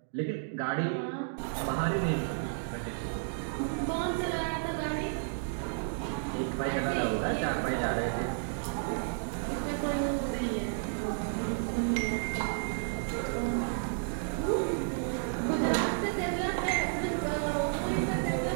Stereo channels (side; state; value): left; silent; digital silence